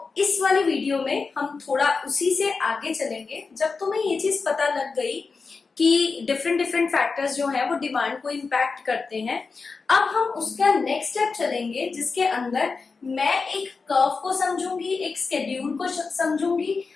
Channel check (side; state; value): right; quieter; 4.5 dB